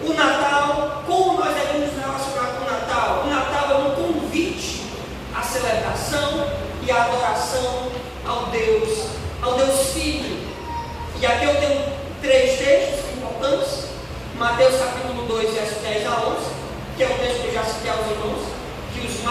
o Natal, como nós devemos nos relacionar com o Natal? O Natal é um convite à celebração e à adoração ao Deus Filho. E aqui eu tenho 3 textos importantes. Mateus capítulo 2, verso 10 a 11, que é o texto que eu já citei aos irmãos, que os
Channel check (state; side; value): identical; both; correlation 1.00